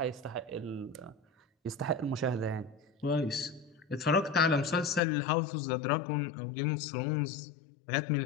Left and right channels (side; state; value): right; drops out; at 5.0 s